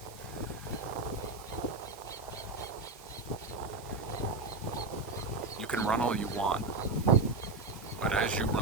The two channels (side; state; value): left; quieter; 3.3 dB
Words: You can run all you want, but as you